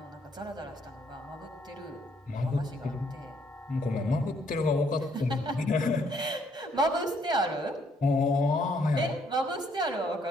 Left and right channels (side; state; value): both; normal; correlation 0.69